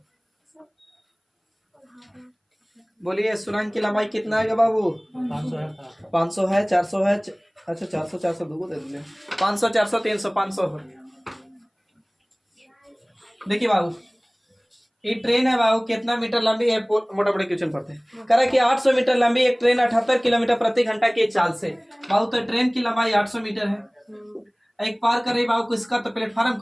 बोलिए सुरंग की लंबाई कितना है बाबू? 500 है 400 है। अच्छा 400 दो दे दिए 500 400 300 500। देखिए बाबू ये ट्रेन है बाबू कितना मीटर लंबी है मोटा मोटे क्वेश्चन पढ़ते हैं। कह रहा है कि 800 मीटर लंबी एक ट्रेन 78 किलोमीटर प्रति घंटा की चाल से। बाबू तो ट्रेन की लंबाई 800 मीटर है। एक पार कर रही बाबू किसका तो प्लेटफार्म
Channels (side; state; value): both; identical; correlation 1.00